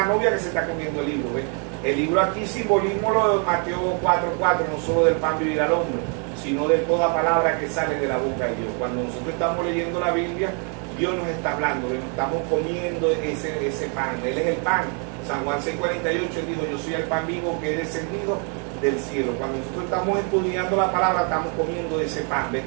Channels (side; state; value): left; quieter; 39.8 dB